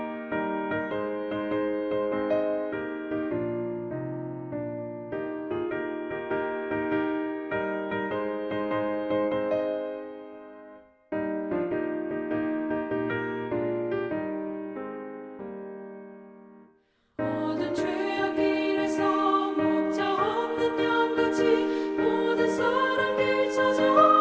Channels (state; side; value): identical; both; correlation 1.00